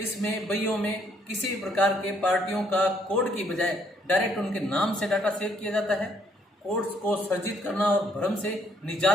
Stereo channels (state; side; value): normal; both; correlation 0.68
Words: बइयों में किसी प्रकार के पार्टियों का कोड की बजाय डायरेक्ट उनके नाम से डाटा सेव किया जाता है। कोड्स को सर्जित करना और भ्रम से